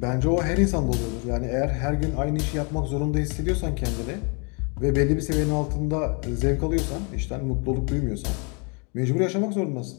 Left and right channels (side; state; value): right; quieter; 35.0 dB